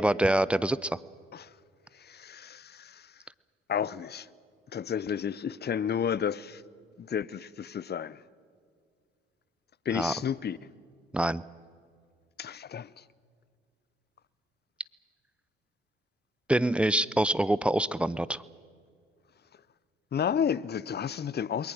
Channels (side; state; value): both; normal; correlation 0.64